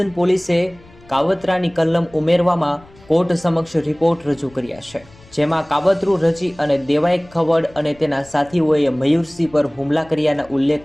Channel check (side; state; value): left; noise; rumble, 26 dB below the sound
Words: પોલીસે કાવતરાની કલમ ઉમેરવામાં કોર્ટ સમક્ષ રિપોર્ટ રજૂ કર્યા છે, જેમાં કાવતરું રચી અને દેવાઈ ખવડ અને તેના સાથીઓએ મયુરસિંહ પર હુમલા કર્યાનો